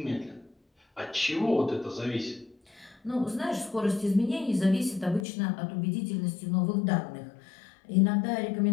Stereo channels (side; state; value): right; drops out; at 5.2 s